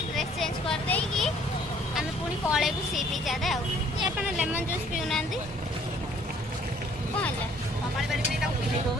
ड्रेस चेंज कर देई की आम पुणी पलैबू सी बीच आड़े आप लेमन जूस पीऊना कौन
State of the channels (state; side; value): normal; both; correlation 0.59